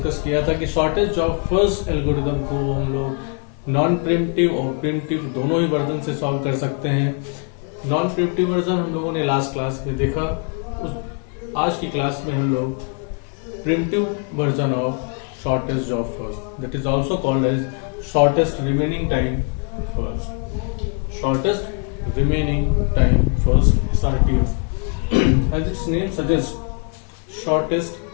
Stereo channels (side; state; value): right; quieter; 39.1 dB